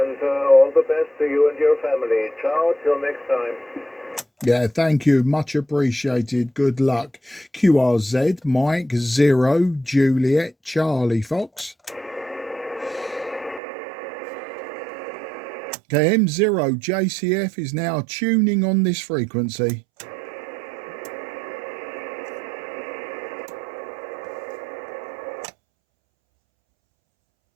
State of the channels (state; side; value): drops out; left; at 13.6 s